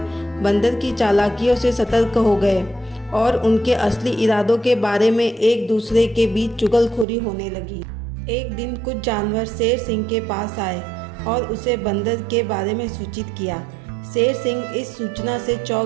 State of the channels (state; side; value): drops out; left; at 7.1 s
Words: बंदर की चालाकियों से सतर्क हो गए और उनके असली इरादों के बारे में एक दूसरे के बीच चुगलखोरी होने लगी। एक दिन कुछ जानवर शेर सिंह के पास आए और उसे बंदर के बारे में सूचित किया। शेर सिंह इस सूचना से